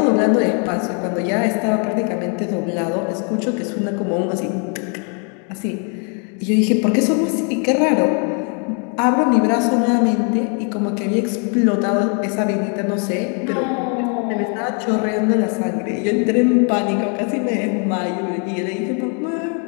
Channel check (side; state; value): right; quieter; 38.9 dB